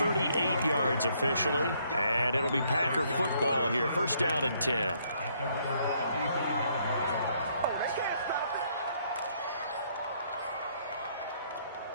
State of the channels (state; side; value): inverted; both; correlation -0.69